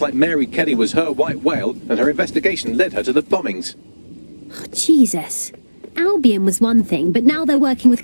like Mary Kelly was her white whale, and her investigation led her to the bombings. Oh, Jesus. Albion was one thing, but now they're working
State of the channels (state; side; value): inverted; both; correlation -1.00